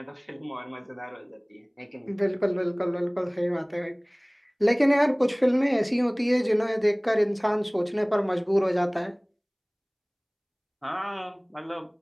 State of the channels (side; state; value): both; identical; correlation 1.00